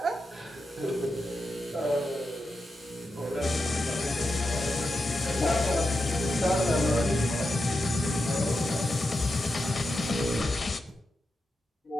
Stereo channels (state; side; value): normal; both; correlation 0.88